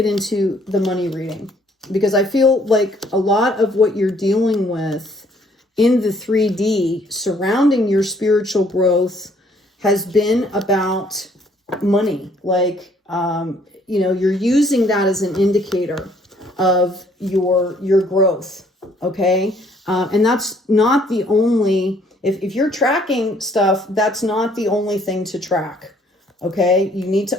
into the money reading, because I feel like a lot of what you're dealing with in the 3D surrounding your spiritual growth has been about money. Like, you know, you're using that as an indicator of your growth. Okay. And that's not the only, if you're tracking stuff, that's not the only thing to track. Okay. You need to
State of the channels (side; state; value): both; normal; correlation 0.63